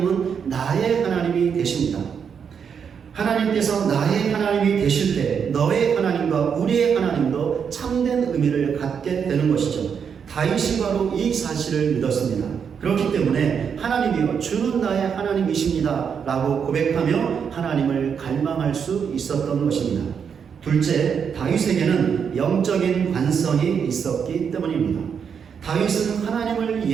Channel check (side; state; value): left; quieter; 7.0 dB